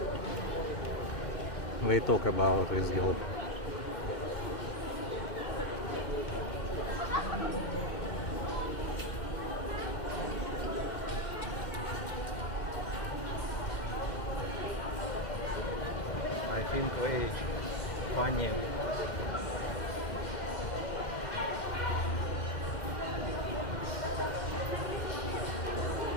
They talk about this girl. I think very funny.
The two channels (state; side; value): late; right; 2.1 ms